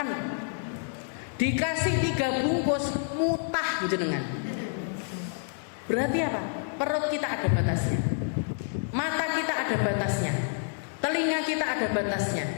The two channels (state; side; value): silent; right; digital silence